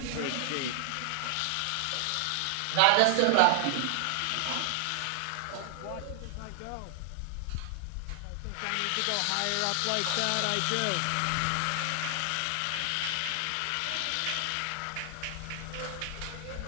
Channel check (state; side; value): different; both; correlation 0.00